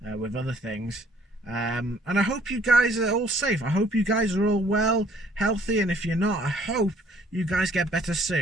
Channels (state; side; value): normal; both; correlation 0.61